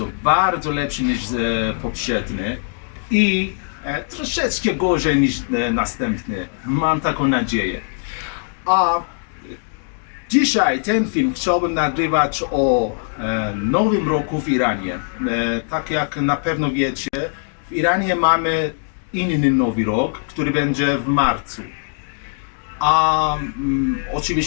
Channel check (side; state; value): right; silent; digital silence